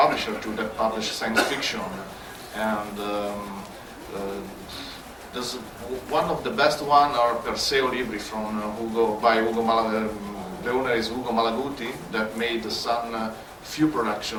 that publish science fiction, and there's one of the best one are Perseo Libri from Ugo Malaguti. The owner is Ugo Malaguti, that made the Sun few production,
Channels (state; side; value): identical; both; correlation 1.00